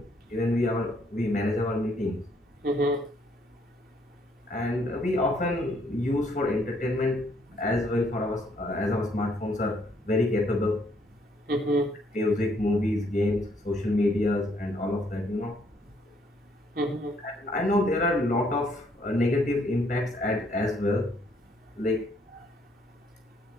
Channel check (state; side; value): normal; both; correlation 0.68